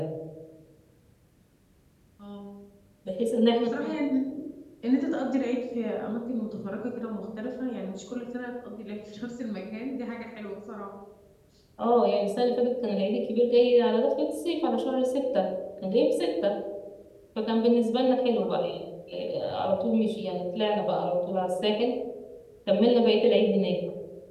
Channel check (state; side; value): identical; both; correlation 1.00